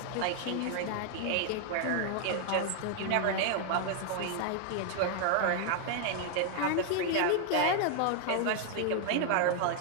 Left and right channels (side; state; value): both; different; correlation 0.00